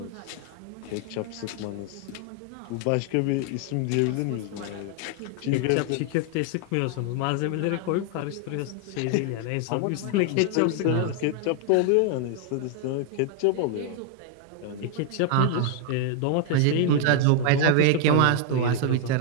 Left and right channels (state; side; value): different; both; correlation 0.00